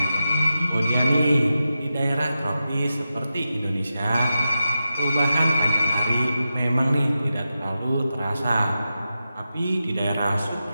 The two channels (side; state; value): both; inverted; correlation -0.90